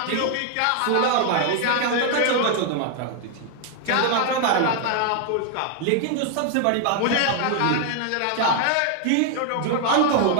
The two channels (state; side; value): different; both; correlation 0.00